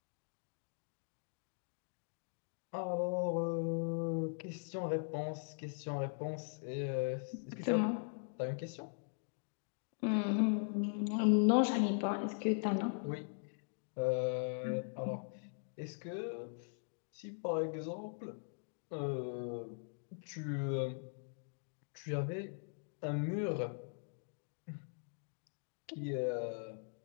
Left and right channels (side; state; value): right; silent; digital silence